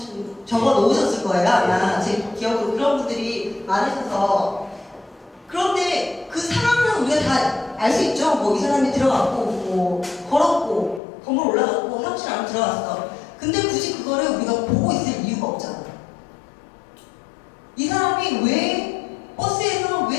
거예요. 아마 제 기억으로 그런 분들이 많으셔서. 그런데 그 상황은 우리가 다 알 수 있죠. 뭐 이 사람이 들어갔고, 뭐 걸었고, 건물 올라갔고, 사무실 안으로 들어갔어. 근데 굳이 그거를 우리가 보고 있을 이유가 없잖아. 이 사람이 왜 버스에서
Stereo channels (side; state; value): right; drops out; at 11.0 s